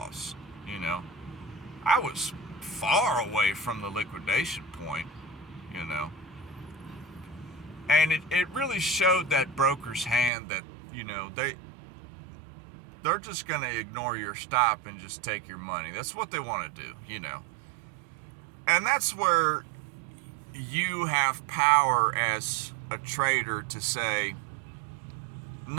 I was far away from the liquidation point, And it really showed that broker's hand that, they're just going to ignore your stop and just take your money. That's what they want to do, And that's where you have power as a trader to say,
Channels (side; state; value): left; drops out; at 10.3 s